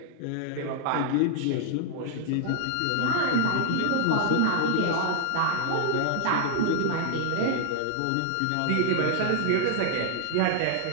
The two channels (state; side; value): different; both; correlation 0.00